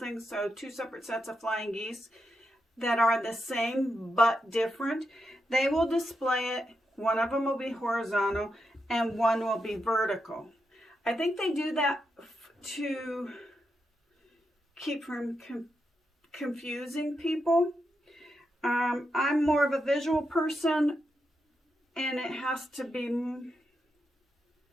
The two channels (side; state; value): both; normal; correlation 0.85